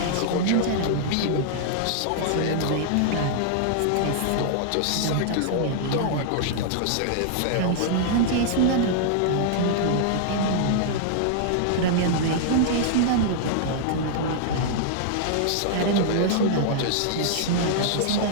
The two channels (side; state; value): both; different; correlation -0.01